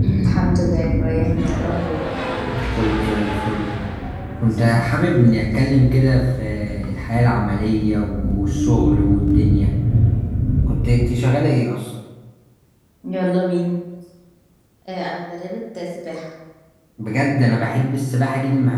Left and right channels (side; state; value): both; identical; correlation 1.00